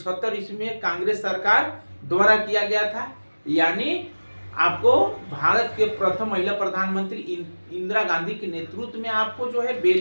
ईस्वी में कांग्रेस सरकार द्वारा किया गया था। यानी आपको भारत के प्रथम महिला प्रधानमंत्री इंदिरा गांधी के नेतृत्व में आपको जो है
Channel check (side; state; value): both; inverted; correlation -1.00